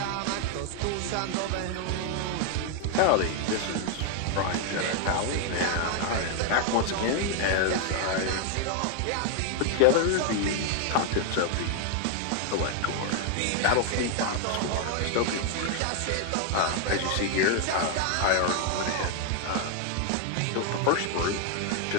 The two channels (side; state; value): both; different; correlation 0.01